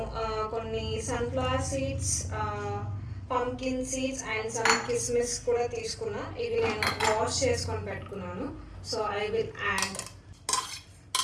కొన్ని sunflower seeds, pumpkin seeds and some కిస్మిస్ కూడా తీసుకున్నా. ఇవి నేను వాష్ చేసుకొని పెట్టుకున్నాను. సో ఐ విల్ యాడ్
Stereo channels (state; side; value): identical; both; correlation 1.00